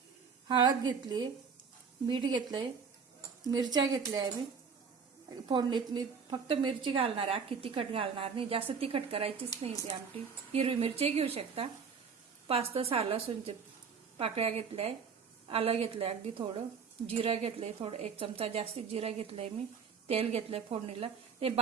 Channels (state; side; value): quieter; left; 6.1 dB